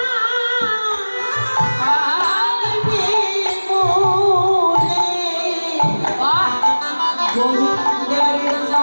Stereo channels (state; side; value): inverted; both; correlation -1.00